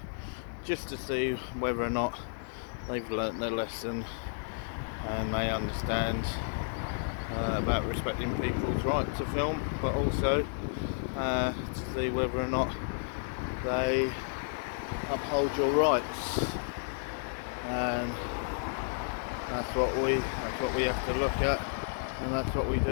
just to see whether or not they've learnt their lesson and they understand about respecting people's right to film, but also to see whether or not they uphold your rights, and that's what we have to look at, and that's what we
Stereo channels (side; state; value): right; silent; digital silence